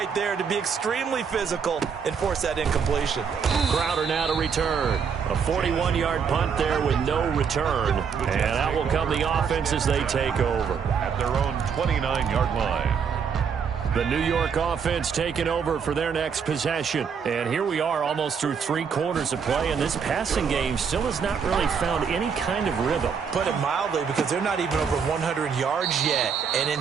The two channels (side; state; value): left; quieter; 6.6 dB